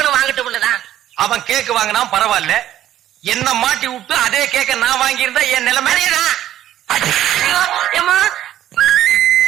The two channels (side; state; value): left; quieter; 12.4 dB